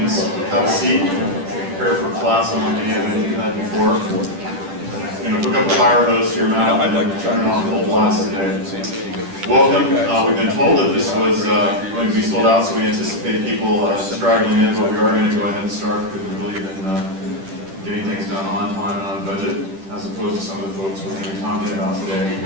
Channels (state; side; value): late; left; 10 ms